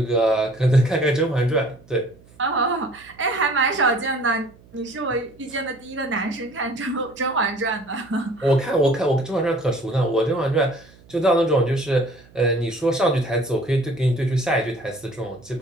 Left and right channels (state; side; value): noise; right; hum, 26 dB below the sound